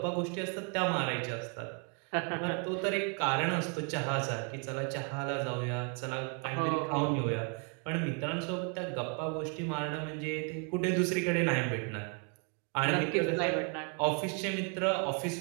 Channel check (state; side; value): quieter; left; 38.2 dB